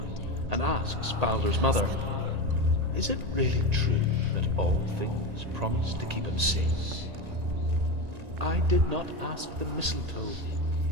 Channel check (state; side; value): late; left; 1.9 ms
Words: and asks Balder's mother, "Is it really true that all things promise to keep him safe?" "I did not ask the mistletoe,"